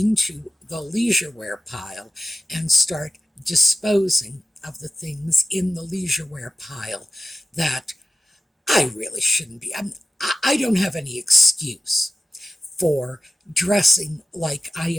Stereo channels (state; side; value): normal; both; correlation 0.92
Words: the leisure wear pile, and start disposing of the things in the leisure wear pile that I really shouldn't be. I don't have any excuse for dressing like I